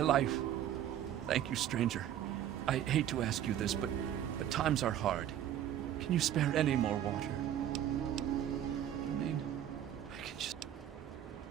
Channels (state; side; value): quieter; left; 10.9 dB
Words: life. Thank you, stranger. I hate to ask you this, but times are hard. Can you spare any more water? I mean, I can just...